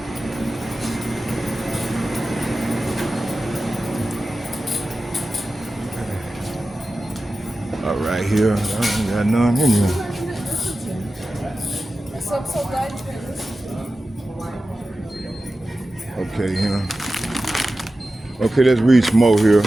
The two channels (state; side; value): normal; both; correlation 0.94